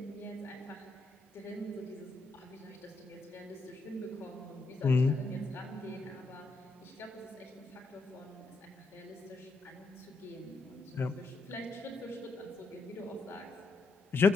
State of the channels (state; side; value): quieter; right; 3.2 dB